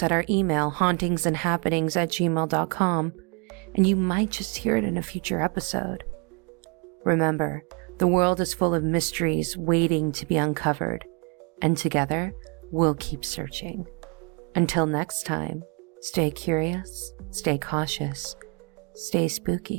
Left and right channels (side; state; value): left; quieter; 33.7 dB